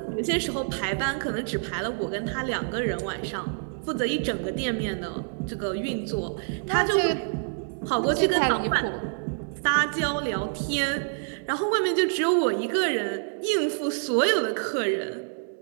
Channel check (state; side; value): silent; left; digital silence